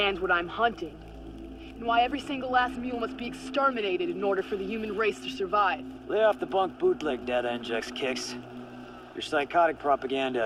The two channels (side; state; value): both; identical; correlation 1.00